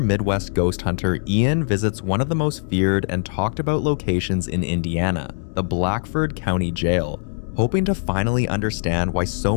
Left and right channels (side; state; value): right; silent; 64 dB below the other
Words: ghost hunter Ian visits one of the most feared and talked about locations in Indiana, the Blackford County Jail, hoping to finally understand why